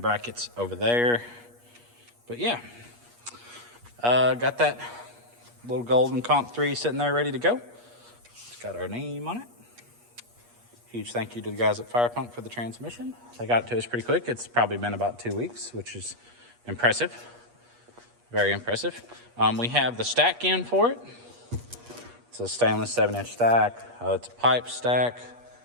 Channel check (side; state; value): left; late; 8.4 ms